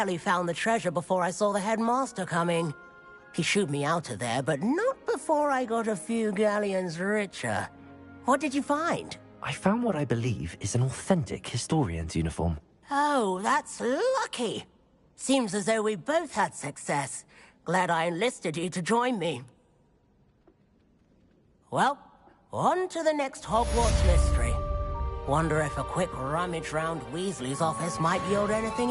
found the treasure before I saw the headmaster coming. He shooed me out of there, but not before I got a few galleons richer. What did you find? I found what I believe is an authentic historian's uniform. Oh, that's lucky. Seems as though we both had success. Glad I enlisted you to join me. Well, on to the next Hogwarts mystery. Wonder if a quick rummage round Weasley's office might yield anything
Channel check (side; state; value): both; identical; correlation 1.00